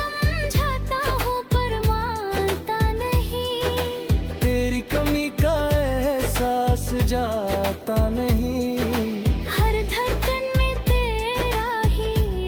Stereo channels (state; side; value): identical; both; correlation 1.00